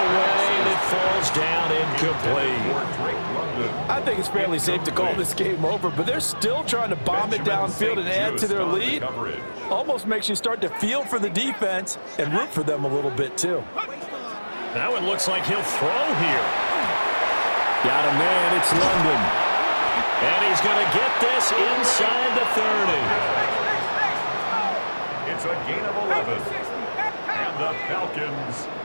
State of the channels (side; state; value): both; inverted; correlation -1.00